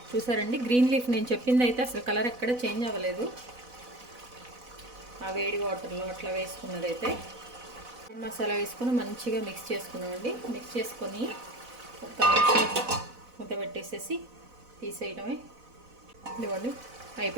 చూసారండి. గ్రీన్ లీఫ్ నేను చెప్పింది అయితే అసలు కలర్ ఎక్కడ చేంజ్ అవ్వలేదు, ఆ వేడి వాటర్లో అట్లా వేసుకున్నదైతే. మసాలా వేసుకొని మంచిగా మిక్స్ చేసుకున్నామండి. మిక్స్ చేసుకొని 1 నిమిషం మూత పెట్టేసేసి తీసేయడమే. ఇదిగోండి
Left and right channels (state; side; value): late; left; 4.0 ms